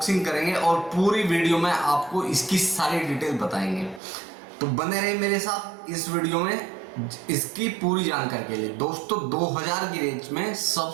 करेंगे और पूरी वीडियो में आपको इसकी सारी डिटेल बताएंगे, तो बने रहे मेरे साथ इस वीडियो में इसकी पूरी जानकारी के लिए। दोस्तों, 2000 की रेंज में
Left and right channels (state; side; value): drops out; left; at 4.0 s